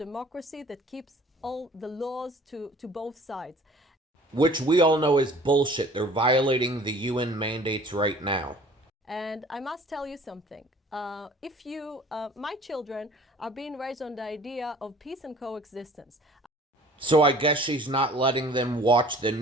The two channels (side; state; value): both; normal; correlation 0.50